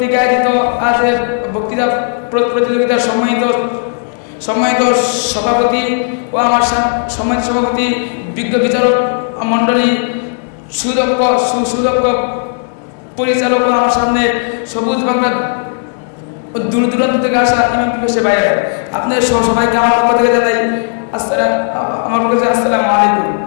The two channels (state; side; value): silent; right; digital silence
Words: আয়োজিত আজকের বক্তৃতা প্রতিযোগিতার সম্মানিত সভাপতি ও আমার সম্মানিত সভাপতি, বিজ্ঞ বিচারক মণ্ডলী, সুদক্ষ পরিচালক ও আমার সামনে সবুজ বাংলা দূর দূরান্ত থেকে আসা ইমাম পিপাসে বাইরে, আপনাদের সবাইকে আমার পক্ষ থেকে জানাই আসসালামু আলাইকুম।